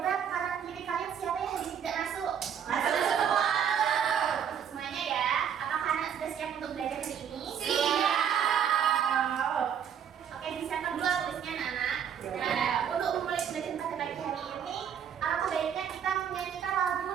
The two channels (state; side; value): quieter; left; 8.4 dB